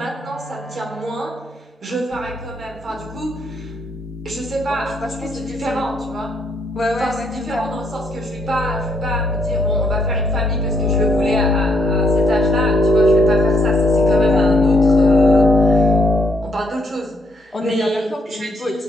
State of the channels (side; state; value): both; normal; correlation 0.72